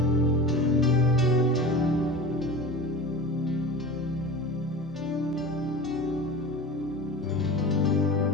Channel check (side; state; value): both; normal; correlation 0.33